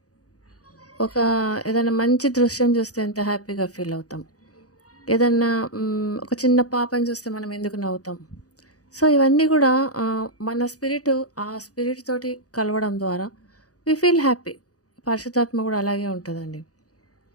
ఏదైనా మంచి దృశ్యం చూస్తే ఎంత హ్యాపీగా ఫీల్ అవుతాం. ఏదన్నా ఒక చిన్న పాపని చూస్తే మనం ఎందుకు నవ్వుతాం. సో ఇవన్నీ కూడా మన ఆ స్పిరిట్ తోటి కలవడం ద్వారా వి ఫీల్ హ్యాపీ. పరిశుద్ధాత్మ కూడా అలాగే ఉంటుందండి.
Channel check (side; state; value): right; late; 0.67 ms